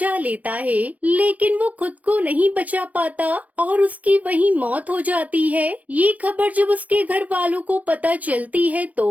लेता है, लेकिन वो खुद को नहीं बचा पाता और उसकी वहीं मौत हो जाती है। ये खबर जब उसके घर वालों को पता चलती है तो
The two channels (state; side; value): late; left; 0.070 ms